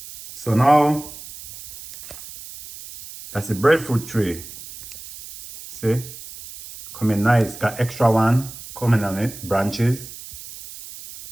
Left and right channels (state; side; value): noise; right; hiss, 15 dB below the sound